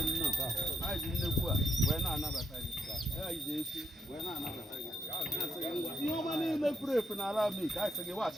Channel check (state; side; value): normal; both; correlation 0.75